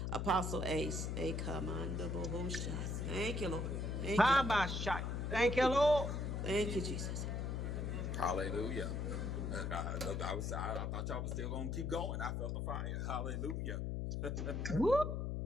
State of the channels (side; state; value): left; noise; hum, 1 dB below the sound